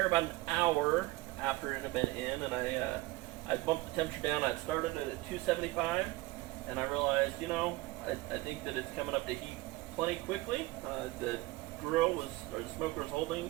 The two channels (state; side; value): quieter; left; 20.4 dB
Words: about an hour after it had been in, and I bumped the temperature down. I'd started it at 275, and I realized, I think that it's coming up to heat plenty quickly. The the smoker was holding